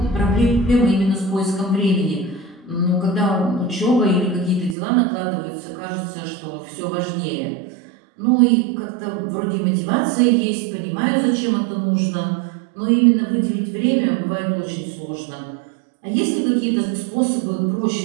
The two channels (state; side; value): drops out; left; at 4.8 s